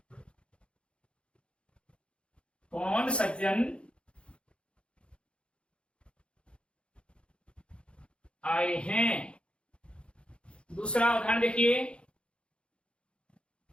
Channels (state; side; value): late; right; 0.058 ms